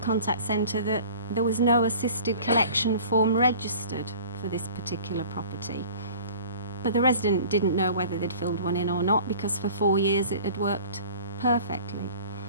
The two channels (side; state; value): both; inverted; correlation -0.45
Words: centre that there was no assisted collection form registered for this particular property. But the resident didn't know whether they'd filled one in or not, because for 4 years it had worked perfectly.